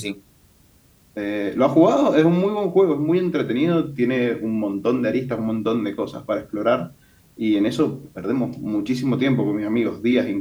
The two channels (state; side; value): identical; both; correlation 1.00